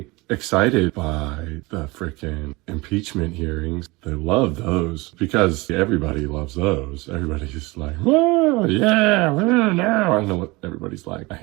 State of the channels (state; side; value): quieter; left; 23.5 dB